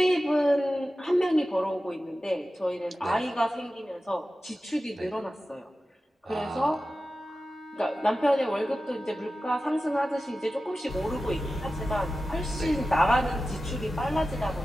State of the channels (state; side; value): normal; both; correlation 0.94